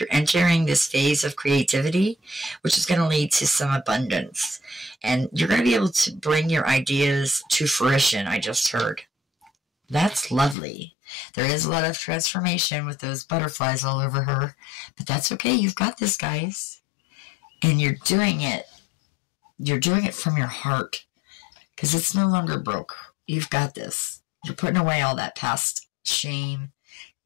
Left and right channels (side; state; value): right; drops out; at 10.6 s